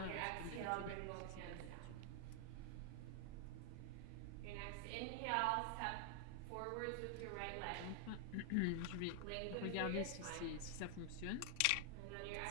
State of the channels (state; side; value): different; both; correlation 0.00